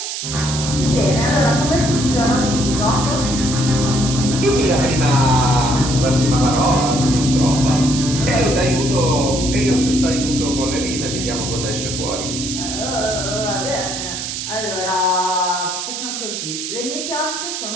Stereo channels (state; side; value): noise; right; hiss, 5 dB below the sound